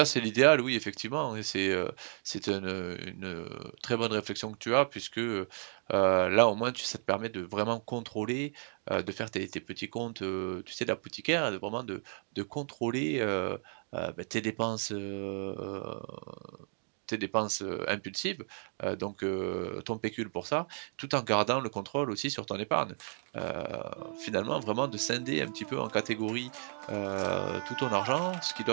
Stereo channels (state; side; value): silent; left; 56 dB below the other